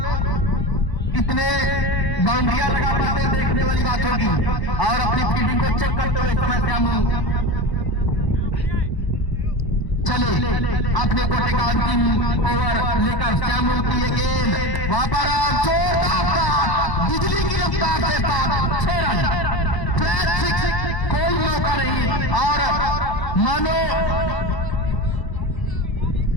कितने बाउंड्रियां लगा पाते हैं देखने वाली बात होगी, और अपनी फील्डिंग को चेक करते हुए समय श्यामू चले अपने कोटे का अंतिम ओवर लेकर। श्यामू की ये गेंद वहां पर जोरदार बिजली की रफ्तार से 6 रन, कोई मौका नहीं, और मानो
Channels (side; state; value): right; late; 1.0 ms